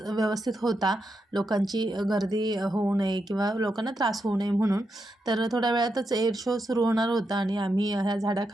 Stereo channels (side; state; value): both; normal; correlation 0.85